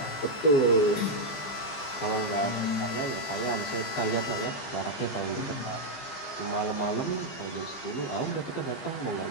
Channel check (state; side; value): late; right; 15 ms